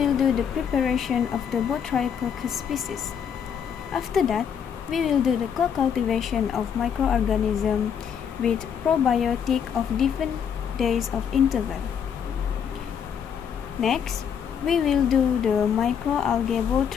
do the preparation of the Botryococcus species. After that, we will do the co-cultivation of microorganisms with probiotic of different days of interval. Next, we will do the microalgae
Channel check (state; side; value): quieter; right; 7.7 dB